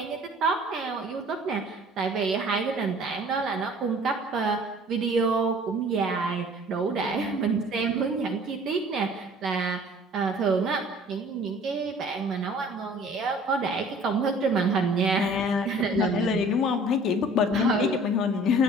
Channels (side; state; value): both; normal; correlation 0.50